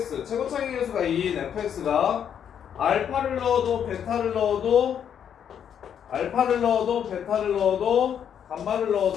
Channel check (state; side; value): quieter; right; 8.6 dB